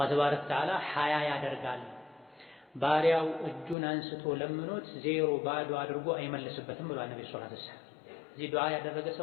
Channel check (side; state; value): right; drops out; at 3.8 s